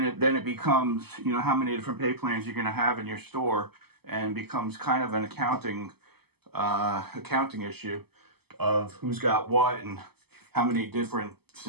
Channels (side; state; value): left; late; 0.96 ms